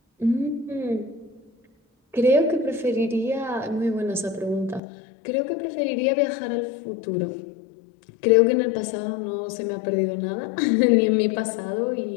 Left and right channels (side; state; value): right; drops out; at 4.8 s